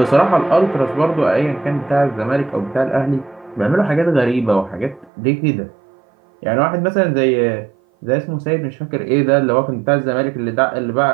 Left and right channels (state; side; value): drops out; left; at 5.1 s